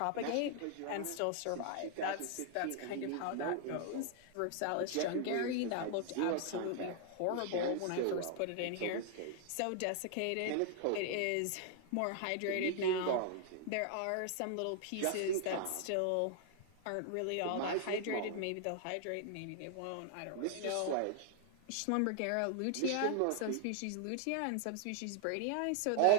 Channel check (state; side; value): different; both; correlation 0.00